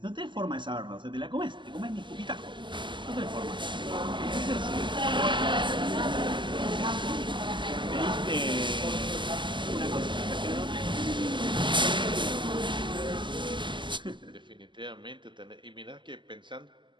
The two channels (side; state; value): left; late; 0.23 ms